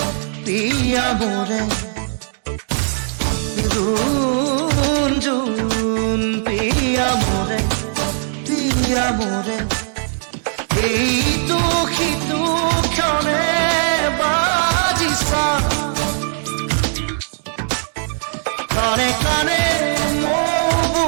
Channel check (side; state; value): left; silent; digital silence